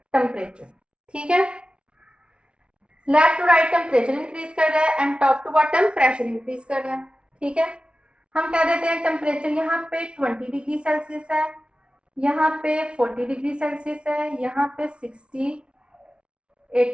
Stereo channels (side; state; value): left; late; 0.057 ms